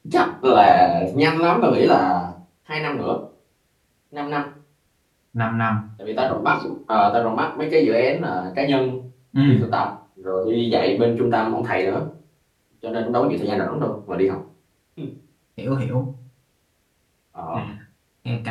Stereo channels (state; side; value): identical; both; correlation 1.00